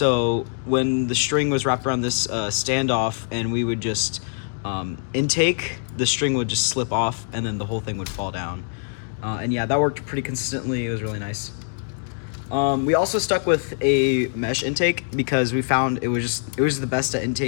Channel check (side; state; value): right; silent; digital silence